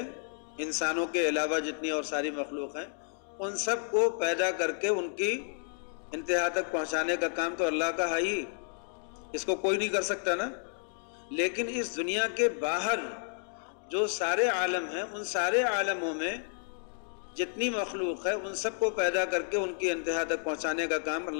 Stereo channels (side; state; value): right; silent; 57 dB below the other